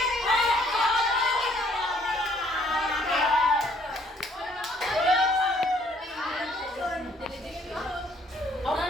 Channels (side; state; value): both; normal; correlation 0.63